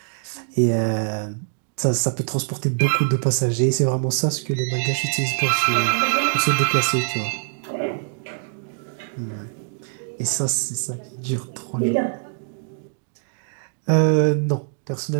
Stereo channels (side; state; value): left; silent; 63 dB below the other